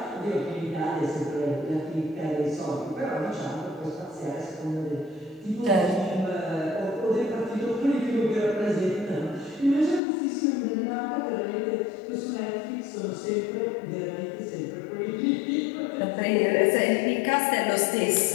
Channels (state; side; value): drops out; right; at 10.0 s